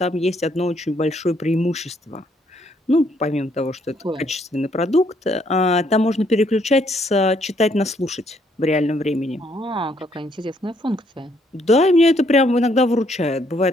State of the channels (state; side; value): normal; both; correlation 0.69